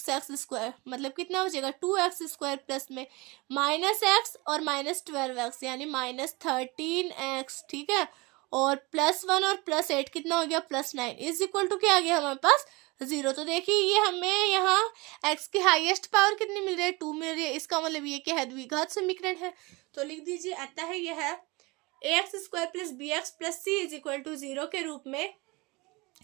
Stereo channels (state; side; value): quieter; left; 25.0 dB